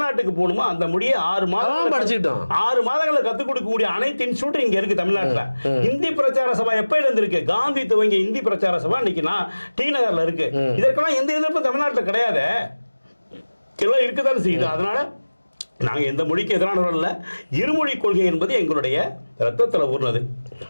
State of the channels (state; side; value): inverted; both; correlation -1.00